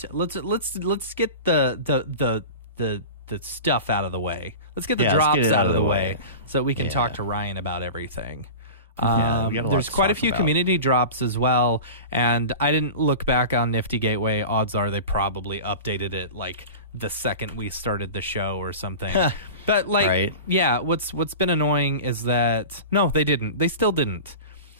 let's get the stuff out of the way. Let's get the drops out of the way so we can talk to Ryan about everything. There's quite a few community drops as well, and I didn't look back on Nifty Gateway. Odds are they probably updated it like the second we started the show or something. But like, yeah, what's been annoying is that no, they didn't. They still didn't.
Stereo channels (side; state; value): both; inverted; correlation -0.32